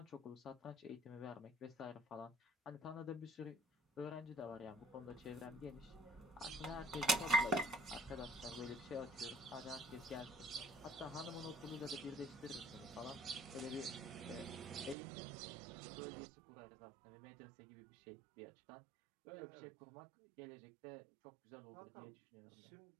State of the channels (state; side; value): drops out; left; at 15.0 s